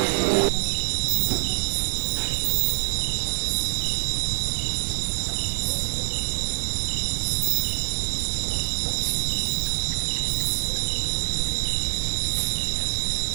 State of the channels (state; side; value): silent; left; digital silence